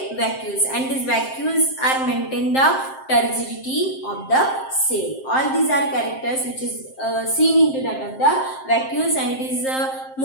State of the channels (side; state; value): right; late; 7.6 ms